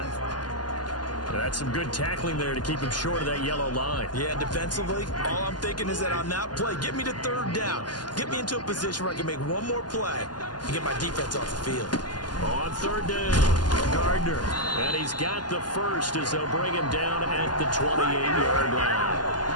That's some good tackling there to keep him short of that yellow line. Yeah, defensively, all I'm thinking is that on that play, get me to 3rd down. Get me into a position where I can make one more play and get my defense off the field. On 3rd down, Gardner. And he's got the 1st as they'll bring him down at the 28-yard line.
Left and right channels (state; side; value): late; right; 0.70 ms